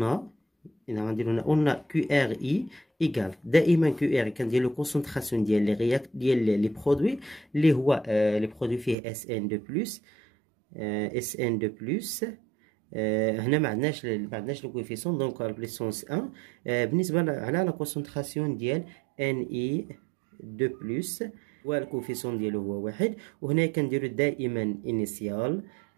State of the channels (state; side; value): drops out; left; at 9.0 s